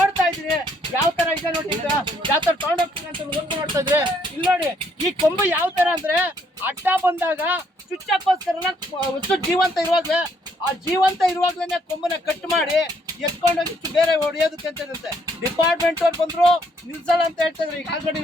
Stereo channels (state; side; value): normal; both; correlation 0.68